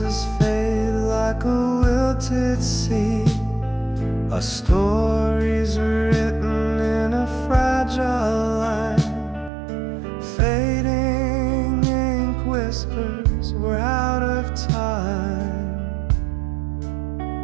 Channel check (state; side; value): drops out; left; at 9.5 s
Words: fade like a wilted seed. Our stories written in a fragile line. Fading ink whispers we're out of time.